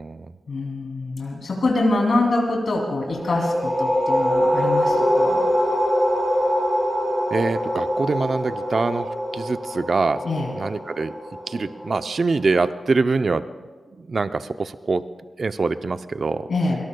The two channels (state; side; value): normal; both; correlation 0.92